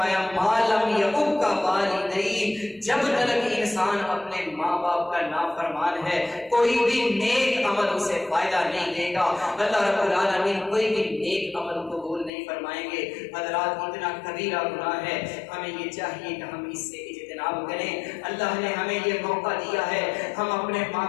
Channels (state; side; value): drops out; right; at 12.3 s